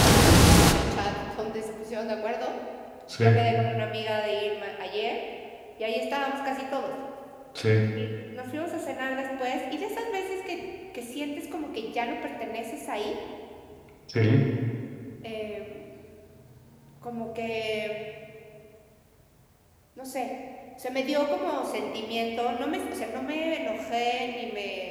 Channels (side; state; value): both; identical; correlation 1.00